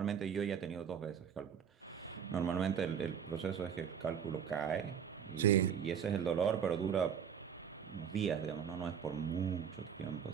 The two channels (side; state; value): left; quieter; 7.9 dB